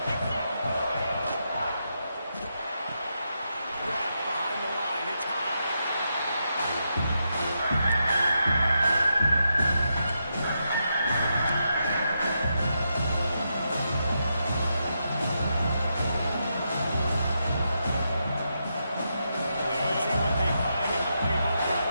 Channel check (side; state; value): both; inverted; correlation -0.84